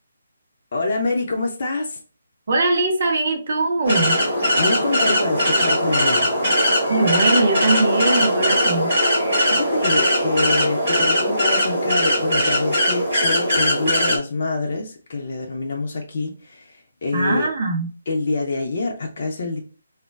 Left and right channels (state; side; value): inverted; both; correlation -0.78